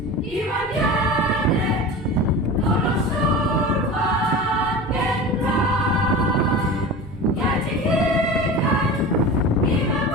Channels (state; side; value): normal; both; correlation 0.32